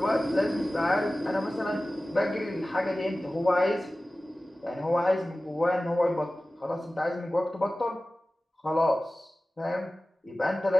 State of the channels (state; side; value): normal; both; correlation 0.96